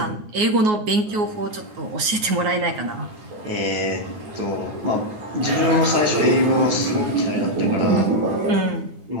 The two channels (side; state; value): left; late; 9.5 ms